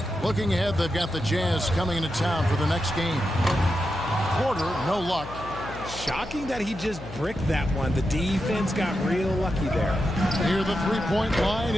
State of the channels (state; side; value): noise; left; hum, 13 dB below the sound